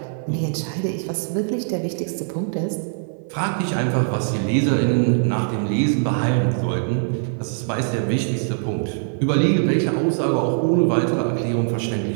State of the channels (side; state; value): left; silent; 57 dB below the other